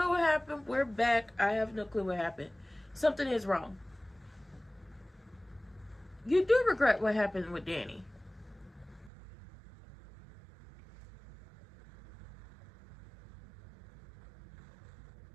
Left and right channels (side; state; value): left; drops out; at 9.1 s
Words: what happened. We're back. I have no clue what happened. Something is wrong. You do regret what happened with Danny.